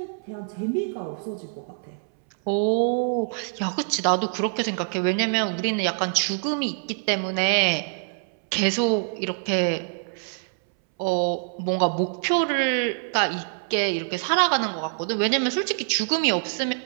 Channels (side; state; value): left; silent; 62 dB below the other